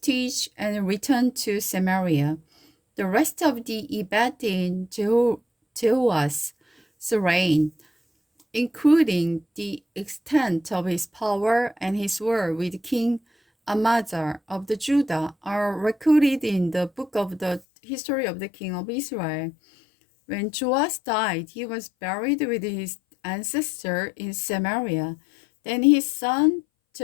and returned to Samaria. The rest of the event in Jehu's reign, including the extent of his power and his war with King Amaziah of the Judah, are recorded in the book of the history of the king of Israel. When Joash died, he was buried with his ancestor in Samaria. Then his son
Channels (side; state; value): right; drops out; at 17.6 s